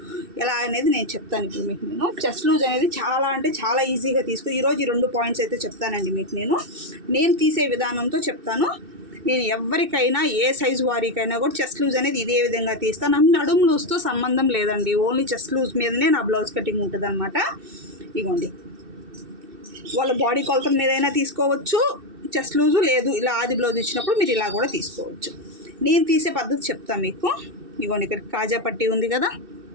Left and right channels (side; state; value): left; late; 2.6 ms